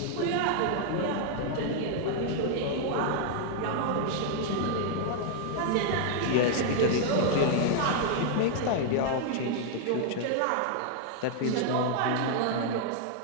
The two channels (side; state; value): both; different; correlation 0.00